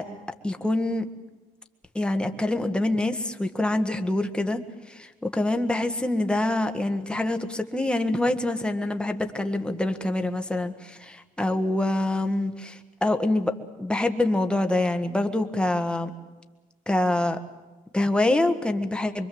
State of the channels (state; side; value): normal; both; correlation 0.90